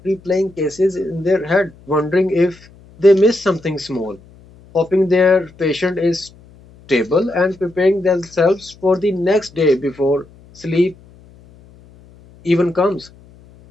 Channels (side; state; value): left; noise; hum, 25 dB below the sound